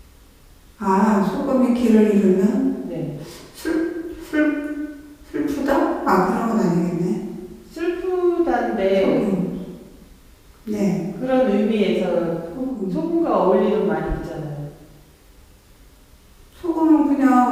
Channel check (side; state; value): both; identical; correlation 1.00